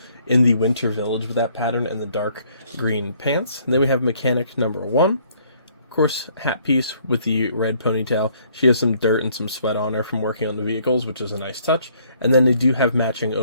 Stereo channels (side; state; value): both; inverted; correlation -0.64